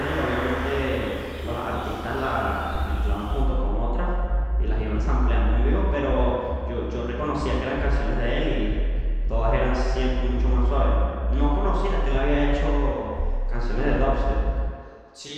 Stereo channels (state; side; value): identical; both; correlation 1.00